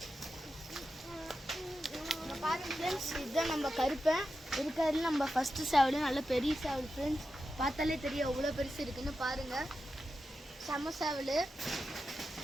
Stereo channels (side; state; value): both; normal; correlation 0.90